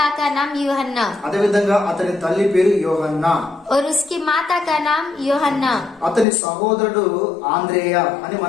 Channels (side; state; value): right; drops out; at 6.2 s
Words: का नाम यूहन्ना అదే విధంగా అతని తల్లి పేరు యోహన్నా, और उसकी माता का नाम यूहन्ना, అతని సహోదరుడు ఆంద్రేయ అని